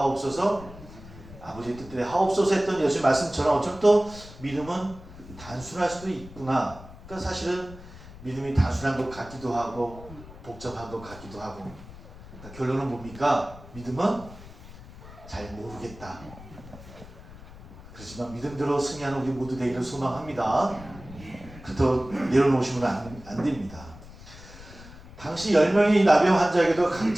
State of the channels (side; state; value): left; noise; rumble, 17 dB below the sound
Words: 아버지의 뜻대로 하옵소서 했던 예수의 말씀처럼 어쩌면 또 믿음은 단순할 수도 있구나. 그러니까 사실은 믿음이 단순한 것 같기도 하고 복잡한 것 같기도 하고 그러니까 결론은 뭡니까? 믿음은 잘 모르겠다. 그렇지만 믿음대로 승리하는 우리 모두 되기를 소망합니다. 그렇다고 내려놓으시면 안 됩니다. 당시 10명의 나병 환자에게도